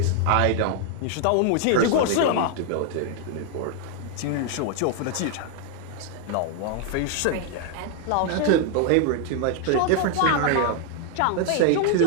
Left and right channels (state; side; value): different; both; correlation 0.00